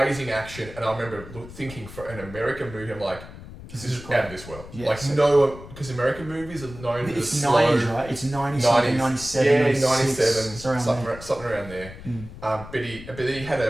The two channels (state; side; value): noise; left; rumble, 15 dB below the sound